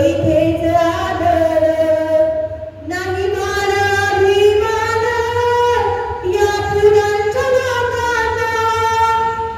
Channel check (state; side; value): identical; both; correlation 1.00